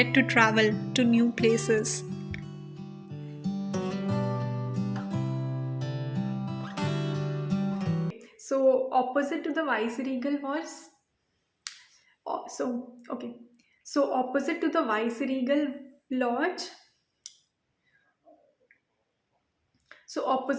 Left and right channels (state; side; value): identical; both; correlation 1.00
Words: to travel to new places. So opposite to the Viceregal was okay. So opposite to the Viceregal Lodge. So